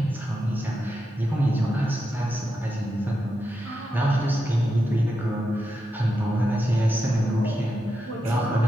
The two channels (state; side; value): normal; both; correlation 0.87